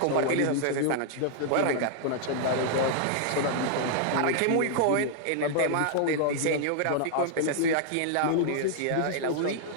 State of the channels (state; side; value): different; both; correlation -0.01